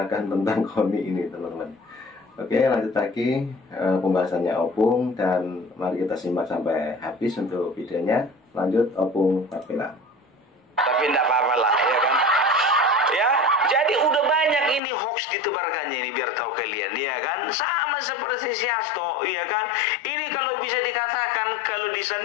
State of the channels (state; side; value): drops out; right; at 14.8 s